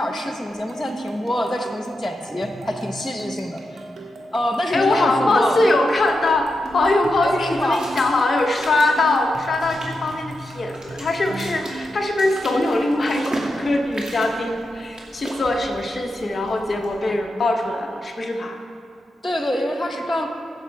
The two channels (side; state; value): both; normal; correlation 0.87